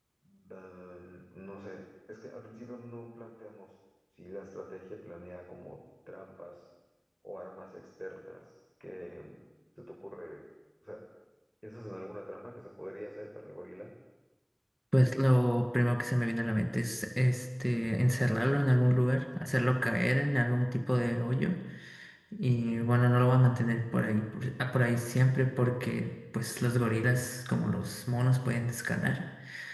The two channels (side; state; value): both; identical; correlation 1.00